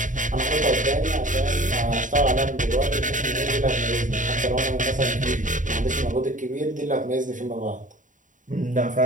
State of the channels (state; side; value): late; left; 0.37 ms